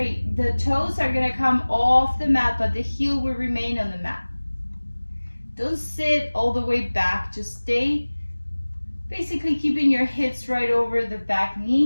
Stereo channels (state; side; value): inverted; both; correlation -1.00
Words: the toes are gonna come off the mat, but the heel will remain on the mat. Don't sit all the way back, just stay basically keeping your hips right over the back